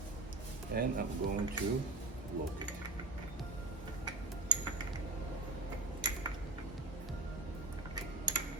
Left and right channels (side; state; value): left; quieter; 3.4 dB